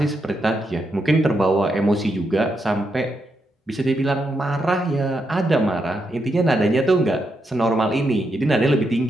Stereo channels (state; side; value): normal; both; correlation 0.82